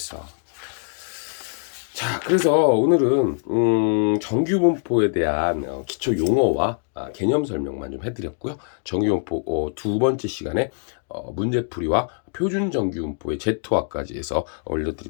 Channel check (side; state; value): right; silent; 63 dB below the other